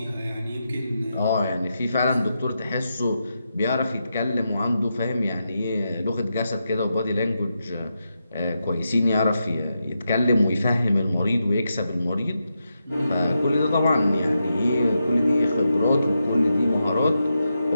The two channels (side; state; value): both; inverted; correlation -0.86